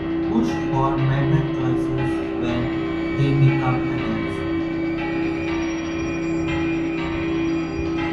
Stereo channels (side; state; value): both; identical; correlation 1.00